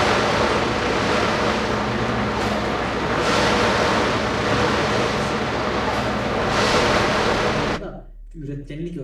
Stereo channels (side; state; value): both; identical; correlation 1.00